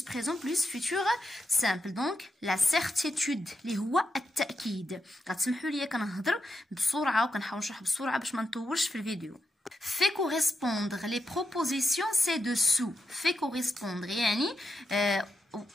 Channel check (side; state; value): both; normal; correlation 0.86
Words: présent plus futur simple. دونك la certitude اللي هو التأكيد. غتسمحوا لي كنهضر بسرعة وكنحاول نشرح بسرعة باش ما نطولش في الفيديو. Fait correspondre les propositions ci-dessous. Fait correspondre يعني